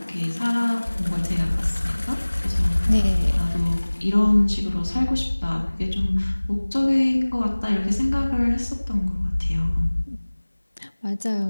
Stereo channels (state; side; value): inverted; both; correlation -1.00